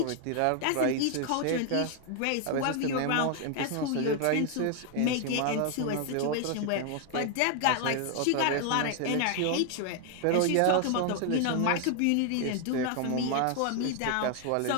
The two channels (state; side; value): different; both; correlation 0.00